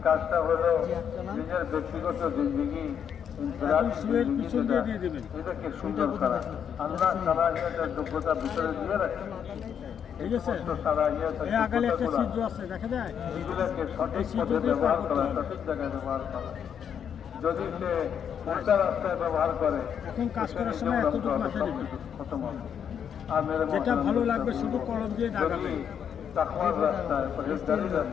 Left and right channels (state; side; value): quieter; right; 8.1 dB